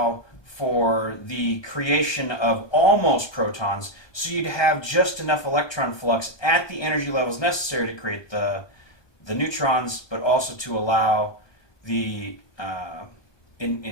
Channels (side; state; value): right; late; 1.2 ms